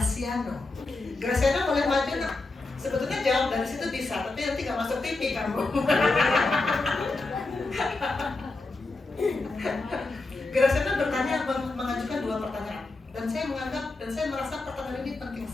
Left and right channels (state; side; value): quieter; right; 3.3 dB